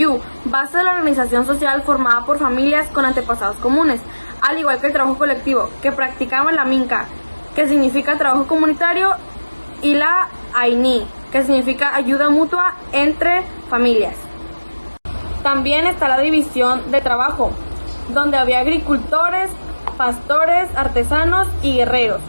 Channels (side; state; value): both; inverted; correlation -1.00